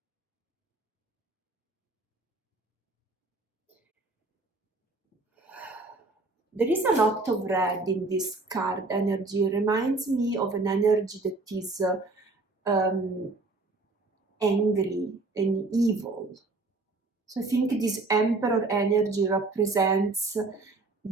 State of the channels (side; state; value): left; quieter; 3.4 dB